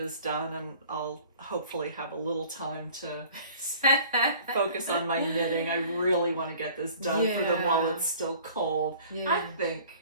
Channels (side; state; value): both; inverted; correlation -0.49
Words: done, and I'll hopefully have a little time to focus on my knitting. I really want to get this done for them while it's still cold. Yeah. I think